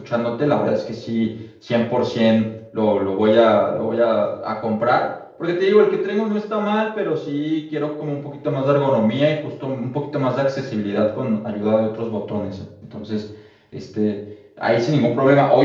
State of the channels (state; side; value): identical; both; correlation 1.00